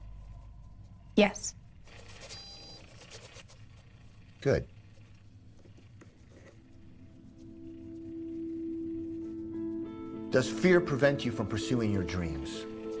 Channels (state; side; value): identical; both; correlation 1.00